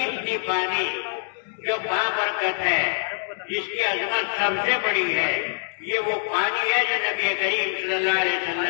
پانی جو بابرکت ہے، جس کی عظمت سب سے بڑی ہے، یہ وہ پانی ہے جو نبی کریم صلی اللہ علیہ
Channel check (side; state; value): right; silent; digital silence